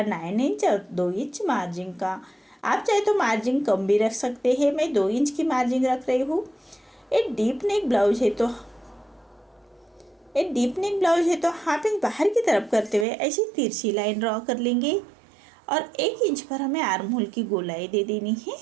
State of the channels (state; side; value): drops out; left; at 13.1 s